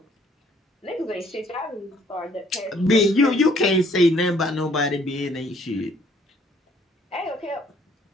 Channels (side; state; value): both; normal; correlation 0.62